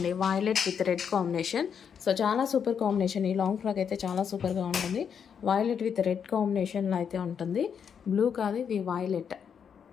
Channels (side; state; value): right; quieter; 7.4 dB